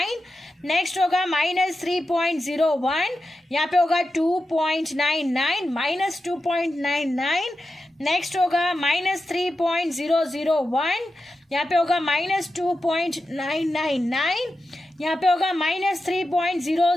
नेक्स्ट होगा -3.01, यहाँ पे होगा 2.99 -2.99. नेक्स्ट होगा -3.001, यहाँ पे होगा -2.999. यहाँ पे होगा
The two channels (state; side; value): normal; both; correlation 0.90